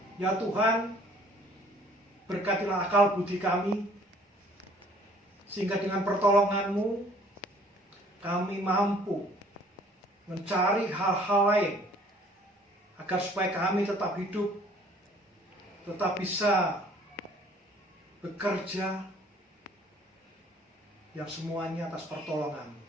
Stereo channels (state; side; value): normal; both; correlation 0.56